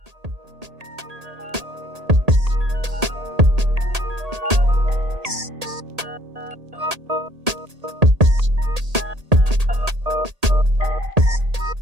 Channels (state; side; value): late; left; 1.8 ms